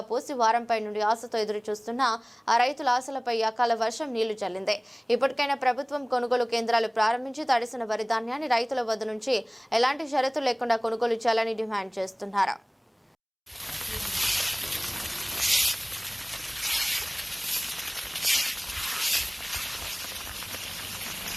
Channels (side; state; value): both; identical; correlation 1.00